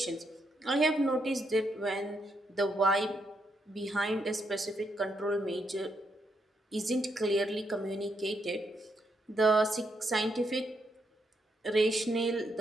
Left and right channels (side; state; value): both; normal; correlation 0.79